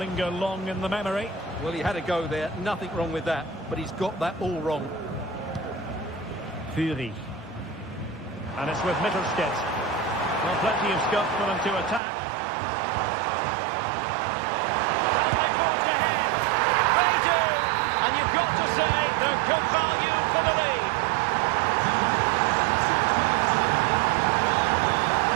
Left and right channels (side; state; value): left; drops out; at 12.0 s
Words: long in the memory. Well, he had a go there. Nothing wrong with that. But he's got that all wrong. Fury. And it's with Mittelstädt. Well, plenty of scope for them to attack. Can they forge ahead? They do! And you've got to say they're good value for the lead.